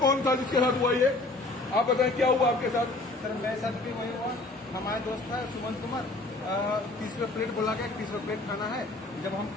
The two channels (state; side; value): quieter; right; 3.0 dB